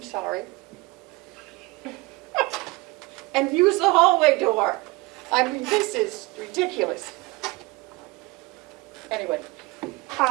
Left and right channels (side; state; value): left; quieter; 22.9 dB